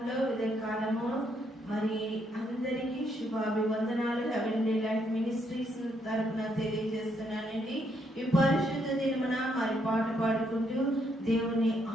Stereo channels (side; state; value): both; normal; correlation 0.74